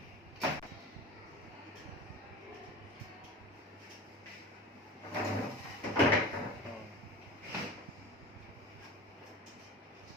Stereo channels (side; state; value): both; normal; correlation 0.35